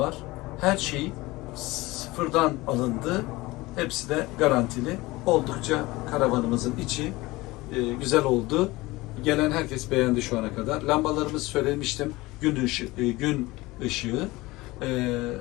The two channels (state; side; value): quieter; right; 20.6 dB